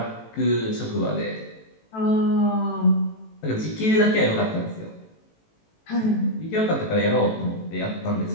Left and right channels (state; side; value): late; right; 18 ms